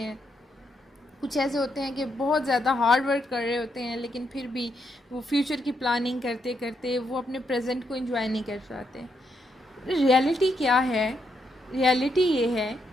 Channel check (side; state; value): both; normal; correlation 0.79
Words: कुछ ऐसे होते हैं कि बहुत ज़्यादा हार्ड वर्क कर रहे होते हैं लेकिन फिर भी वो फ्यूचर की प्लानिंग करते करते वो अपने प्रेजेंट को एंजॉय नहीं कर पाते। रियलिटी क्या है? रियलिटी ये है